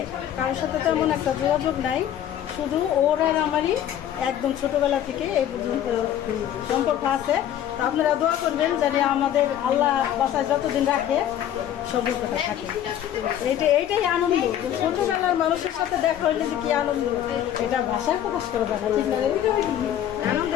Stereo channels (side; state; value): right; quieter; 10.8 dB